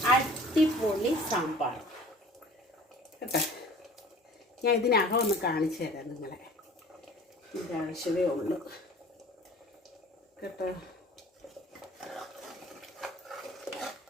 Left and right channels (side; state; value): both; normal; correlation 0.46